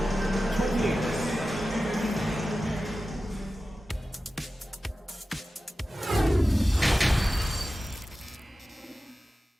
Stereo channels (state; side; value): normal; both; correlation 0.94